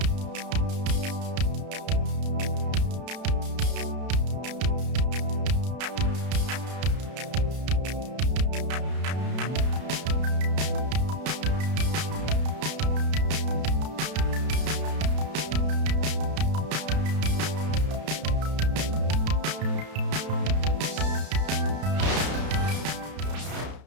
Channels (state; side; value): late; left; 32 ms